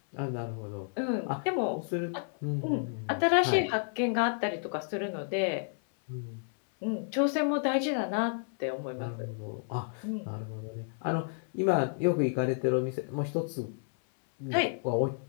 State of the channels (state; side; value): silent; right; 57 dB below the other